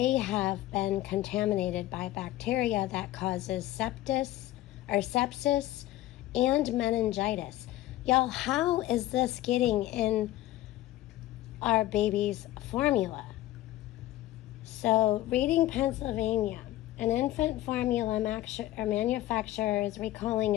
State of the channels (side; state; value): right; quieter; 15.2 dB